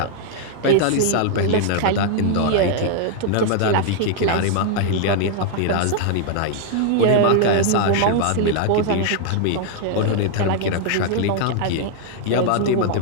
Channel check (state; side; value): different; both; correlation 0.00